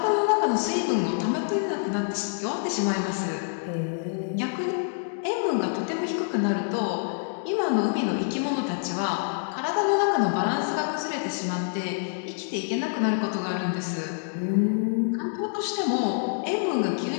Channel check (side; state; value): right; silent; digital silence